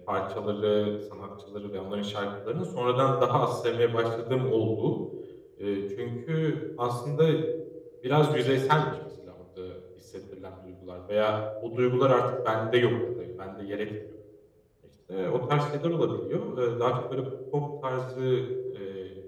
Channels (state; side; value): identical; both; correlation 1.00